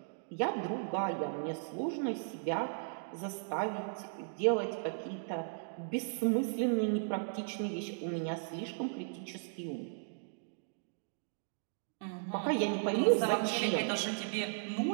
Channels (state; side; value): silent; left; digital silence